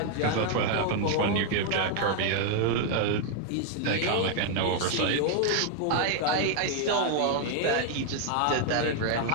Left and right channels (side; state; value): both; different; correlation 0.00